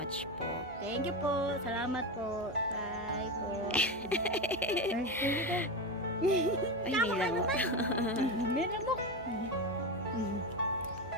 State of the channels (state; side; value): normal; both; correlation 0.17